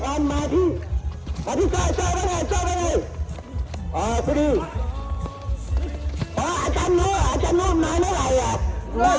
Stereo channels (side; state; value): both; identical; correlation 1.00